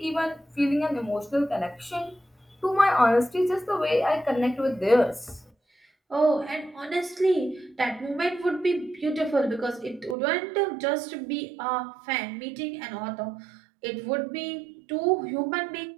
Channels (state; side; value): drops out; left; at 10.2 s